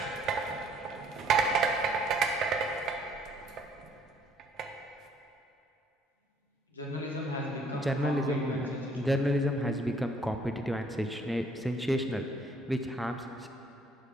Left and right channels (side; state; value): both; normal; correlation 0.62